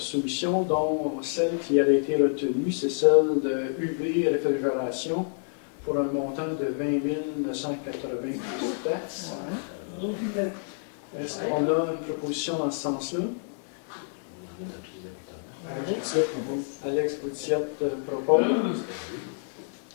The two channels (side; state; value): right; silent; digital silence